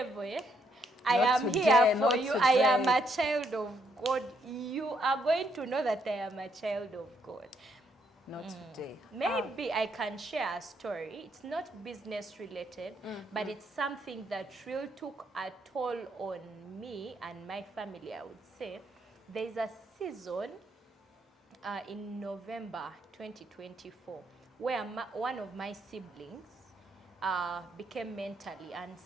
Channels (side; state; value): both; normal; correlation 0.74